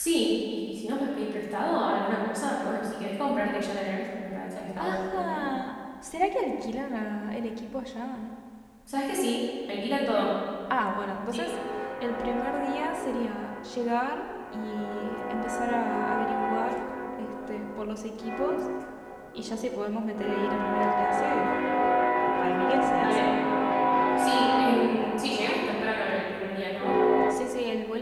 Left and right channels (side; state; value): both; identical; correlation 1.00